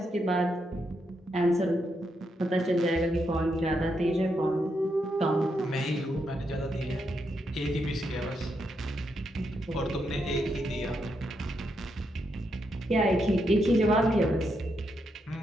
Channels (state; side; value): normal; both; correlation 0.81